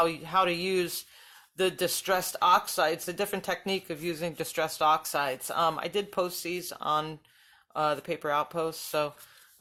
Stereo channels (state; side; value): identical; both; correlation 1.00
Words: to use the distressed oxides, the different technique of using distressed oxides. I did post these on the Paper Outpost, so